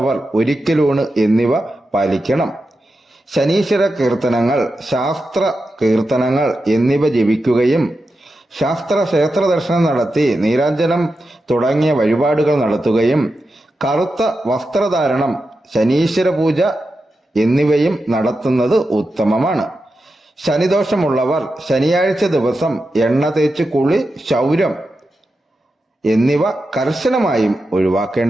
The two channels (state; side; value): normal; both; correlation 0.90